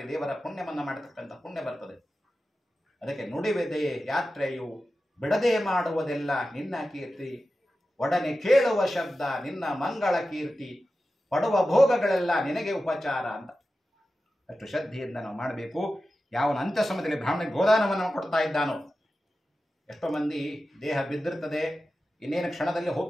ದೇವರ ಪುಣ್ಯವನ್ನ ಮಾಡತಕ್ಕಂಥ ಪುಣ್ಯ ಬರ್ತದೆ. ಅದಕ್ಕೆ ನುಡಿಯುವುದೇ ಯಾತ್ರೆಯು, ಬಿಡದೆ ಮಾಡುವುದೆಲ್ಲ ನಿನ್ನ ಕೀರ್ತಿ, ಒಡನೆ ಕೇಳುವ ಶಬ್ದ ನಿನ್ನ ಮಂಗಳ ಕೀರ್ತಿ, ಪಡುವ ಭೋಗಗಳೆಲ್ಲ ನಿನಗೆ ಉಪಚಾರ ಅಂತ ಅಷ್ಟು ಶ್ರದ್ಧೆಯಿಂದ ನಾವು ಮಾಡಬೇಕು. ಯಾವನ ಅಂತ್ಯ ಸಮಯದಲ್ಲಿ ಬ್ರಾಹ್ಮಣಿಗೆ ಗೋದಾನವನ್ನು ಕೊಡ್ತಾ ಇದ್ದಾನೋ, ಎಷ್ಟೋ ಮಂದಿ ದೇಹ ಬಿದ್ದಿರ್ತದೆ, ಇನ್ನೇನು ಕ್ಷಣದಲ್ಲಿ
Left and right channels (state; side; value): normal; both; correlation 0.93